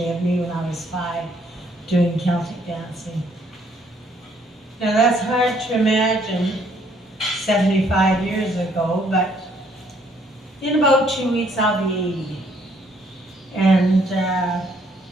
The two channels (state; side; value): normal; both; correlation 0.66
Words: of me when I was 5 doing Celtic dancing. Now that's hard to imagine 75 years ago, but in about 2 weeks I'll be 80. And